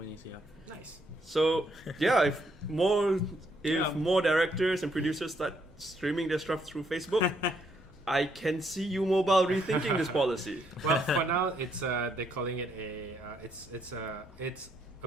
Yeah. Nice. So yeah, if more Yeah. directors and producers start streaming their stuff through Facebook, I can see you mobile rethinking this policy. Well, for now, it's they're calling it it's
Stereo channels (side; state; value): both; normal; correlation 0.73